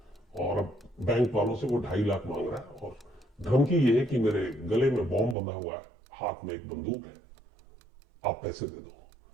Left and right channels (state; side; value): drops out; left; at 5.4 s